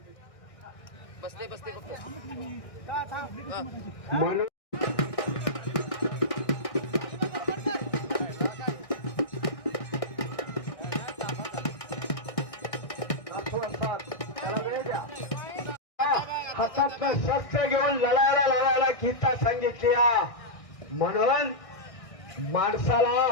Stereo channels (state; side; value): late; right; 1.6 ms